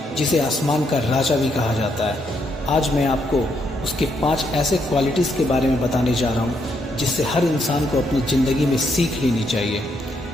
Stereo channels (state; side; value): normal; both; correlation 0.76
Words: जिसे आसमान का राजा भी कहा जाता है। आज मैं आपको उसके 5 ऐसे क्वालिटीज़ के बारे में बताने जा रहा हूँ जिससे हर इंसान को अपनी ज़िंदगी में सीख लेनी चाहिए।